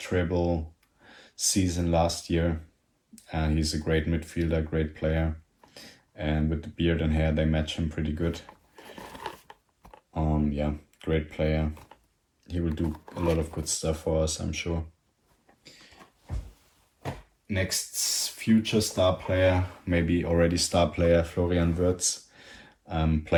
season last year. He's a great midfielder, great player. And with the beard and hair, they match him pretty good. Yeah, great player. He will do a lot of good stuff for us, I'm sure. Next future star player, maybe already star player, Florian Wirtz.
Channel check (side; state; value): both; identical; correlation 1.00